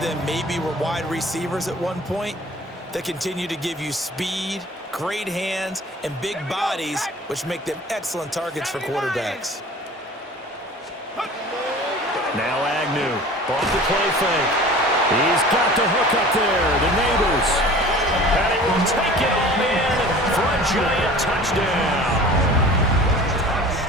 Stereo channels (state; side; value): normal; both; correlation 0.43